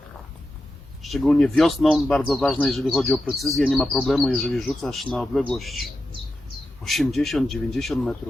szczególnie wiosną, bardzo ważne, jeżeli chodzi o precyzję. Nie ma problemu, jeżeli rzucasz na odległość 80, 90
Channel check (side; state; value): both; normal; correlation 0.90